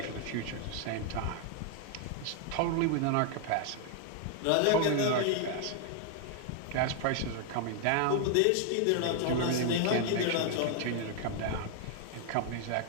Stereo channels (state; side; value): different; both; correlation 0.00